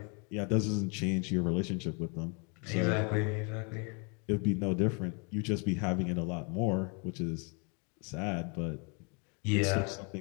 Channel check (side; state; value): right; quieter; 35.0 dB